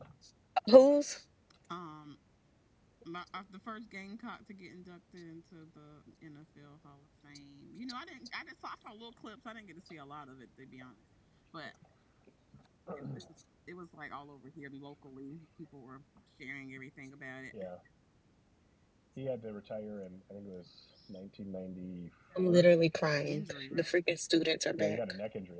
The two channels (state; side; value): identical; both; correlation 1.00